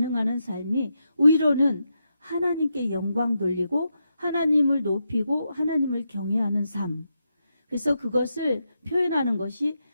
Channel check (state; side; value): inverted; both; correlation -0.85